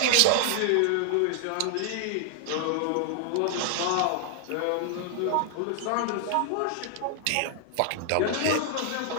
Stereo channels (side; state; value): both; different; correlation 0.00